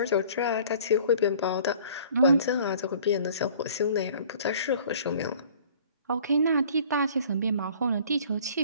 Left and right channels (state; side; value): inverted; both; correlation -0.51